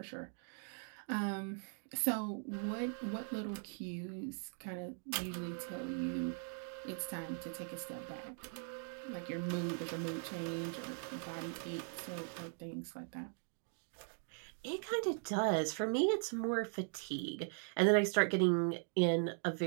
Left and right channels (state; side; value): silent; left; 51 dB below the other